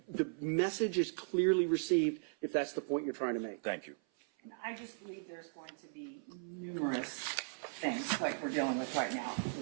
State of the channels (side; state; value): left; silent; 53 dB below the other